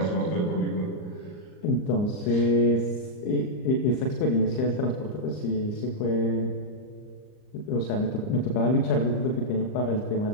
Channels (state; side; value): late; right; 39 ms